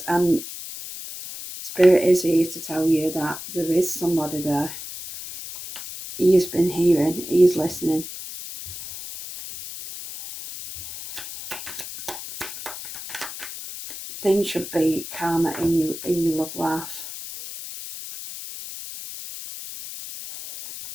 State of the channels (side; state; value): left; noise; hiss, 10 dB below the sound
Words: and Spirit is here to tell you that there is somebody there. He has been hearing, he is listening. Things should be calmer in your love life.